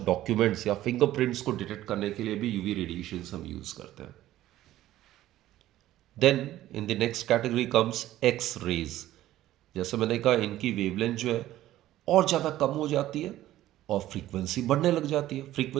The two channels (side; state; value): left; quieter; 14.3 dB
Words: डॉक्यूमेंट्स या फिंगरप्रिंट्स को डिटेक्ट करने के लिए भी यूवी रेडिएशंस हम यूज़ करते हैं। Then in the next category comes X rays. जैसे मैंने कहा इनकी वेवलेंथ जो है और ज़्यादा कम हो जाती है और फ्रीक्वेंसी बढ़ने लग जाती है।